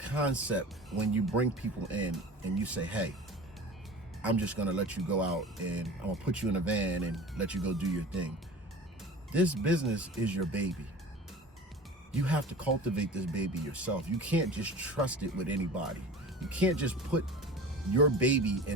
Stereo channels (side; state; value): both; normal; correlation 0.37